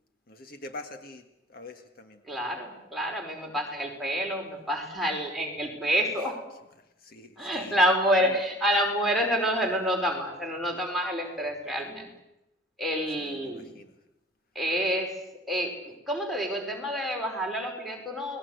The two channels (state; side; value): normal; both; correlation 0.46